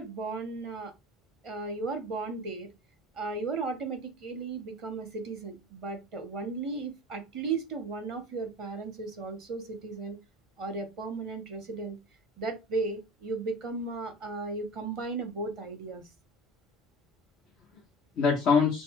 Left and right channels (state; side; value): normal; both; correlation 0.38